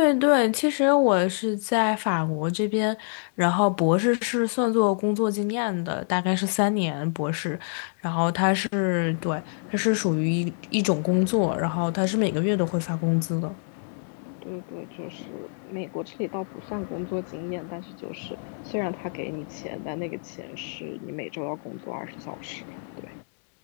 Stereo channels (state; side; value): silent; right; digital silence